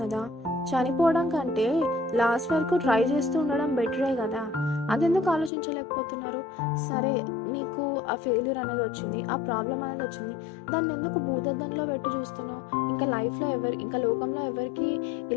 కదా. చనిపోవడం కంటే లాస్ట్ వరకు ట్రై చేస్తూ ఉండడం బెటరే కదా. అదెందుకు ఆలోచించలేకపోతున్నారు? సరే, నీకు ఆ ఫెయిల్యూర్ అనేది వచ్చింది, ఆ ప్రాబ్లం అనేది వచ్చింది, దాన్ని ఎందుకు భూతద్దంలో పెట్టి చూస్తున్నావు? ఇంకా లోకంలో ఎవరికి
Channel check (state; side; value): drops out; right; at 5.5 s